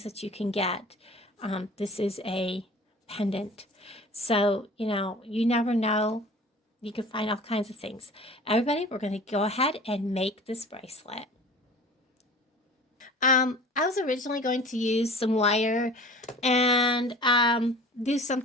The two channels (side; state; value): both; normal; correlation 0.43